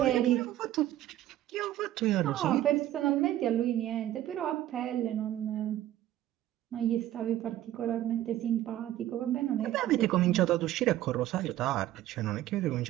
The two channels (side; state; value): left; quieter; 13.4 dB